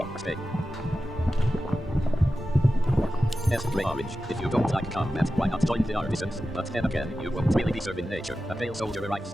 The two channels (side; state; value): both; normal; correlation 0.93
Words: S gray orange. If you don't like combat, why not join the artisans? But then again, you won't really be serving nature. A pale soldier arrives.